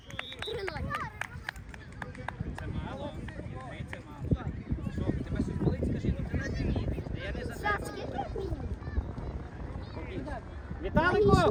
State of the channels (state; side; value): identical; both; correlation 1.00